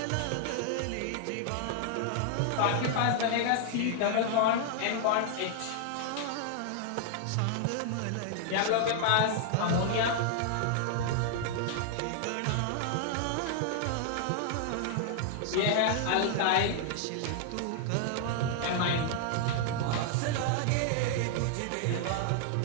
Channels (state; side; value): different; both; correlation -0.01